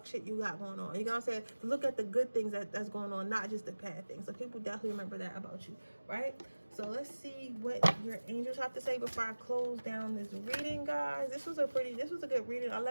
shit you got going on. You know what I'm saying? Look at the good things that's going on, not just the bad things. So people definitely remember that about you, right? So let's see what your angels have to say before I close down this reading, guys. This was a good reading. I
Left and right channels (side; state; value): both; inverted; correlation -1.00